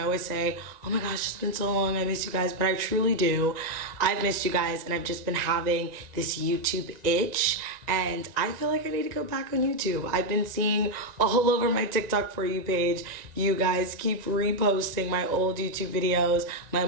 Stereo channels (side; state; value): left; late; 1.9 ms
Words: always say, oh my gosh, it's been so long, I miss you guys, but I truly do. I've missed you guys, and I've just been having this YouTube itch, and I feel like I need to go back on YouTube. I've been seeing all over my TikTok For You page, you guys keep reposting my old YouTube videos, my